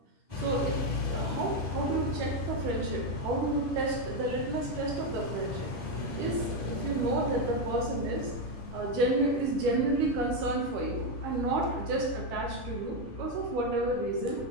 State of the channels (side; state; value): left; late; 10 ms